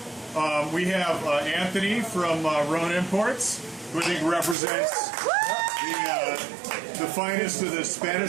We have Anthony from Rhone Imports, who I think represents the finest of the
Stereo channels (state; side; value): drops out; left; at 4.5 s